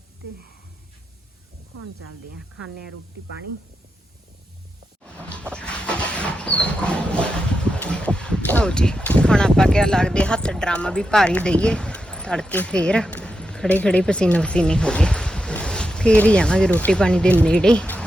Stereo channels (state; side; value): normal; both; correlation 0.87